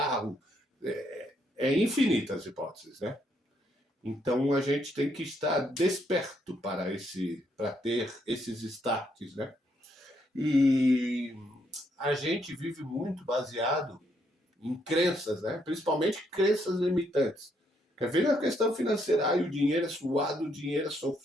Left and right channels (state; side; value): normal; both; correlation 0.74